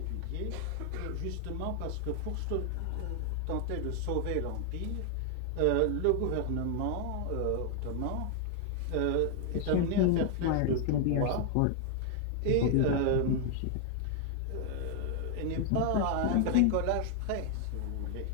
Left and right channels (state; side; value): different; both; correlation 0.00